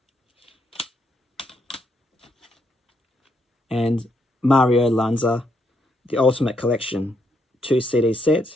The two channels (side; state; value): both; normal; correlation 0.76